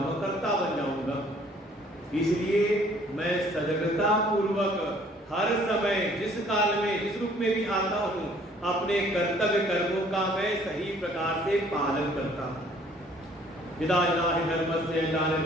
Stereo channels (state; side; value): normal; both; correlation 0.58